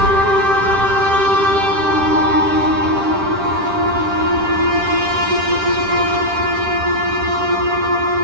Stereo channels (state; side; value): late; left; 10 ms